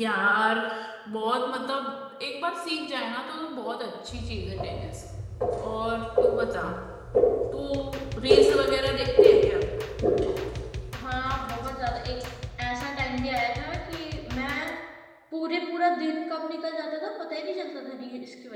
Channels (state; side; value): identical; both; correlation 1.00